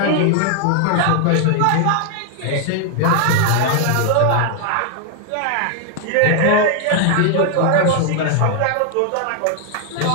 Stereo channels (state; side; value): different; both; correlation 0.00